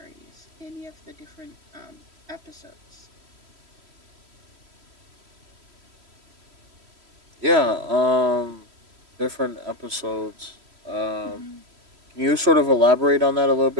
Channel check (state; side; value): late; left; 3.1 ms